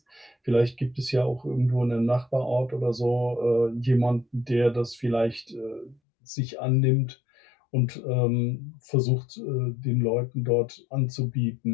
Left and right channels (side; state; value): right; drops out; at 6.0 s